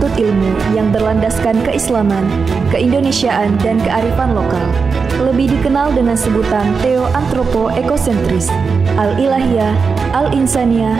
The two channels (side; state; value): left; quieter; 5.1 dB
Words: ilmu yang berlandaskan keislaman, keindonesiaan, dan kearifan lokal. Lebih dikenal dengan sebutan Theo Antropo Ekosentris, Al-Ilahiyah, Al-Insaniyah,